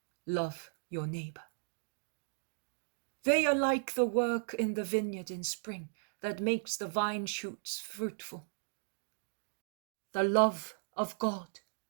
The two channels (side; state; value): left; silent; digital silence